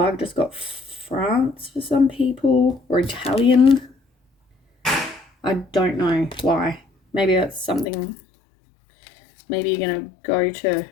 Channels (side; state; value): right; drops out; at 7.9 s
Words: I've just got France for some people, or Italian. I don't know why. Maybe that's something. Maybe you're going to go to